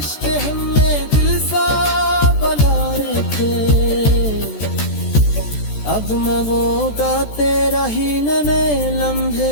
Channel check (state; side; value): late; right; 14 ms